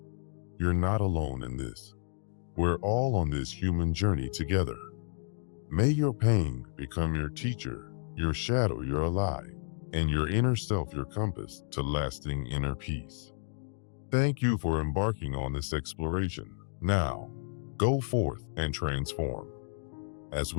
You're not alone in this. We're all on this human journey together. May your pain become your teacher, your shadow your ally, and your inner self your compass to lasting inner peace. Thank you for embarking on this exploration. Now, go forth and transform. As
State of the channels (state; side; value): silent; right; digital silence